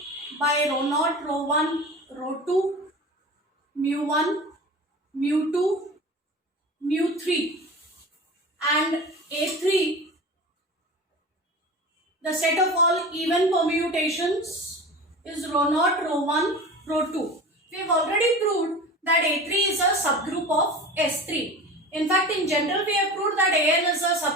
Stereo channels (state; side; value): normal; both; correlation 0.34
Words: by rho naught, rho 1, rho 2, mu 1, mu 2, mu 3, and A3, the set of all even permutations, is rho naught, rho 1, rho 2. We have already proved that A3 is a subgroup of S3. In fact, in general, we have proved that AN is a